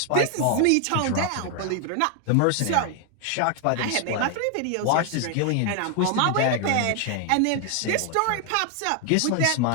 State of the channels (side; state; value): both; different; correlation 0.00